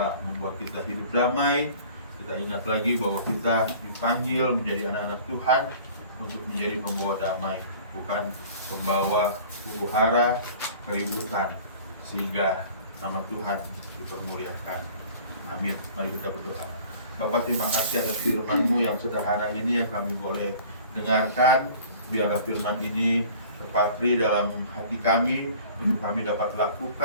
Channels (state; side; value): inverted; both; correlation -0.47